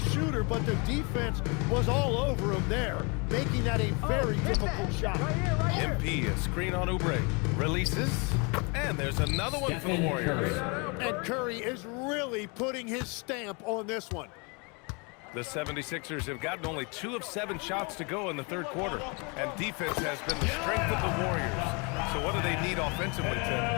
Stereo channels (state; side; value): quieter; right; 31.4 dB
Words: shooter, but the defense was all over him there, making that a very difficult shot. EmBiid, a screen on Oubre. Releases. And there's another one for the Warriors. And Curry is really putting his stamp on this one. The 76ers have gotten only 2 of 7 shots to go in the 3rd quarter. And defense has been the strength of the Warriors. So what do they need offensively, Tim?